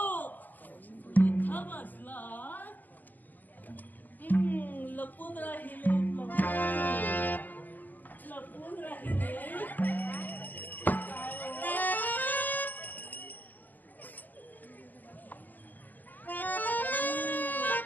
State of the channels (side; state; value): right; late; 0.084 ms